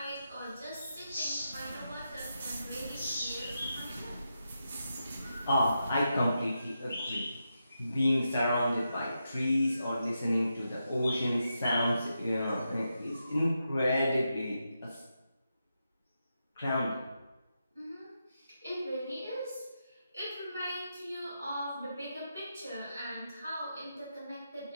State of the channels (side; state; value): both; inverted; correlation -0.86